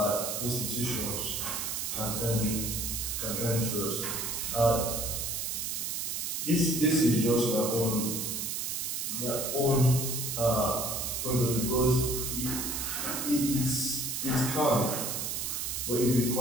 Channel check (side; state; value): right; noise; hiss, 2 dB below the sound